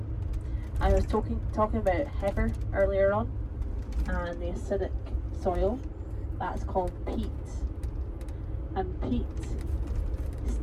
I was talking about heather earlier on and the acidic soil. That's called peat. And peat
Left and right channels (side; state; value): both; identical; correlation 1.00